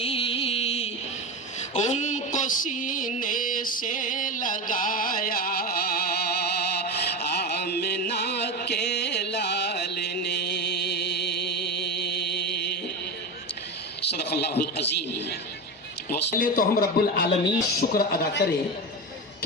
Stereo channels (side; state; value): both; normal; correlation 0.21